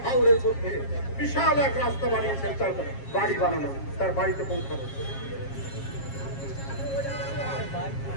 হাওরের মধ্যে বিশাল এক রাস্তা বানিয়েছেন তার বাড়ি বানানো, তার বাড়িতে পৌঁছানো।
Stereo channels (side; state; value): right; late; 7.4 ms